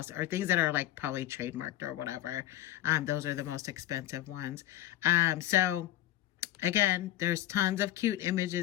or things that are like probably trademarked or whatever. Those are the most expensive ones. So again, there's tons of cute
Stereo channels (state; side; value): quieter; right; 14.0 dB